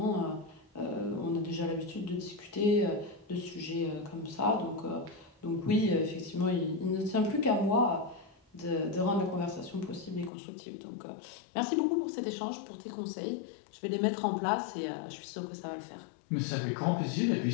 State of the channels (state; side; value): drops out; right; at 10.3 s